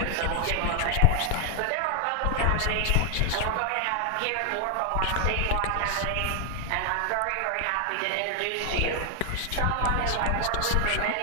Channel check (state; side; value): different; both; correlation 0.00